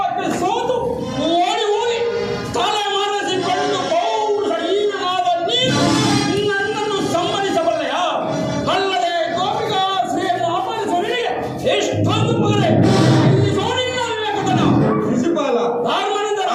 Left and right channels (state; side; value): identical; both; correlation 1.00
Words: ಸೋತು ಓಡಿ ಹೋಗಿ ತಲೆ ಮರೆಸಿಕೊಂಡು ಪೌರುಷಹೀನನಾದ ನೀನು ನನ್ನನ್ನು ಸಮ್ಮತಿಸಬಲ್ಲೆಯ? ಅಲ್ಲದೆ ಗೋಪಿಕಾ ಶ್ರೀಯನ್ನು ಅಪಹರಿಸುವವನಿಗೆ ಎಷ್ಟೊಂದು ಪಗರೆ ನಿನ್ನ ವಿವೇಕತನ. ಶಿಶುಪಾಲ, ಧರ್ಮನಂದನ,